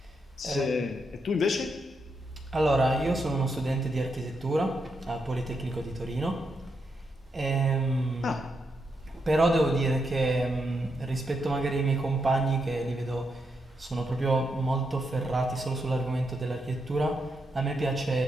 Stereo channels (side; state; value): both; normal; correlation 0.82